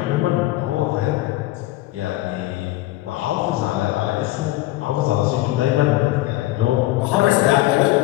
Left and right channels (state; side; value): quieter; right; 17.2 dB